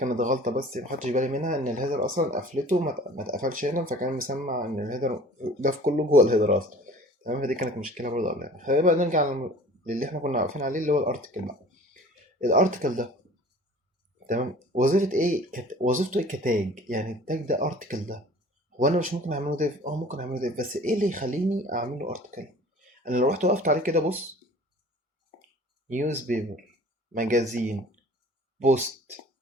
غلطه بس ما خدتش بالي منها، ان الهيدر اصلا قفلته ما اتقفلش هنا، فكان مسمع ان الهيدر ده في كله جوه الهيدر اصلا. تمام، فدي كانت مشكله برضه قبلها. خلينا بقى نرجع للي احنا كنا واقفين عليه، اللي هو الارتكل بقى. الارتكل ده، تمام. وظيفة ايه وظيفته ايه كتاج؟ يعني التاج ده ارتكل ده، هو انا مش ممكن اعمله ديف؟ ممكن اعمله ديف، بس ايه اللي يخليني اعمله ارتكل؟ انا لو رحت وقفت عليه كده، بص، نيوز بيبر، ماجازين، بوست،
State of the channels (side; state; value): both; normal; correlation 0.46